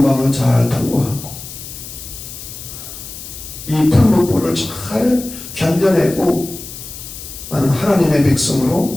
밤을 잘 통과하고 이 풀무불을 잘 견뎌내고 나는 하나님의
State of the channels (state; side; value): noise; left; hiss, 12 dB below the sound